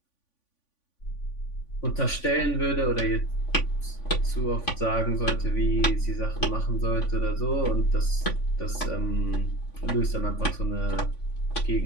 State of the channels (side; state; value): right; late; 3.5 ms